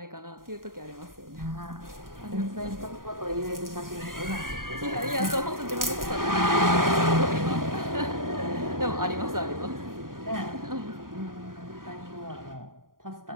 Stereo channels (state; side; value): late; left; 0.91 ms